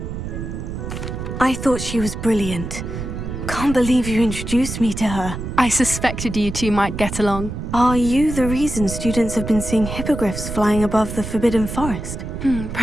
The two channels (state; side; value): noise; right; rumble, 6 dB below the sound